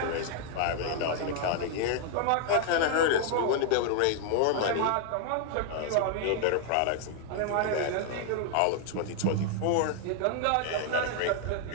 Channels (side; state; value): both; different; correlation 0.00